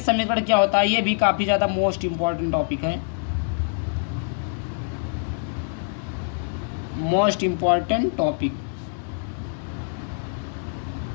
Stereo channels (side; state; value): right; silent; digital silence